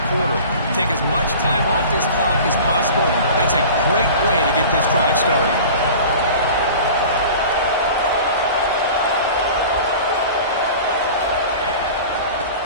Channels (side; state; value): both; inverted; correlation -0.39